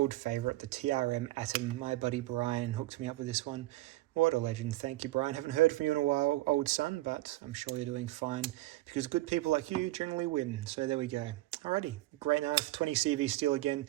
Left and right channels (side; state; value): left; quieter; 17.9 dB